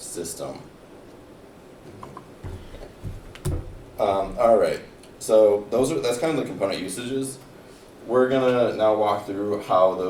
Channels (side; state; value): both; identical; correlation 1.00